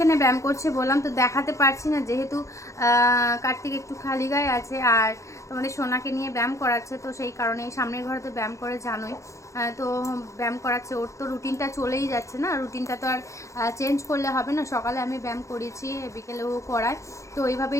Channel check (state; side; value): late; right; 0.15 ms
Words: ব্যায়াম করছে বললাম, তো দেখাতে পারছি না যেহেতু কার্তিক একটু খালি গায়ে আছে, আর তোমাদের সোনাকে নিয়ে ব্যায়াম করাচ্ছে, তো সেই কারণে সামনের ঘরে তো ব্যায়াম করে জানোই। তো ব্যায়াম করাচ্ছে, ওর তো রুটিনটা চলেই যাচ্ছে না, রুটিনটা তো আর চেঞ্জ করলে হবে না। সকালে আমি ব্যায়াম করিয়েছি, বিকেলেও করায়, তো